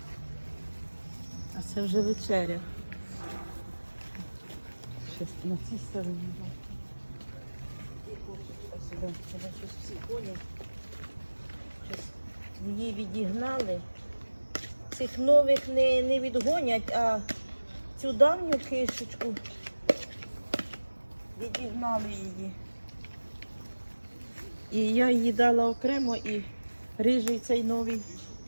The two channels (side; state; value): both; inverted; correlation -1.00